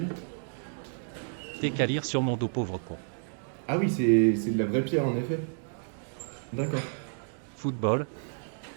T'es qu'à lire sur mon dos, pauvre con. Ah oui, c'est de la vraie pierre en effet. D'accord. Football,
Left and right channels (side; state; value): left; silent; digital silence